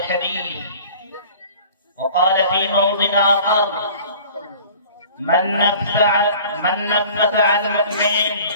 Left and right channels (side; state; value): both; inverted; correlation -0.46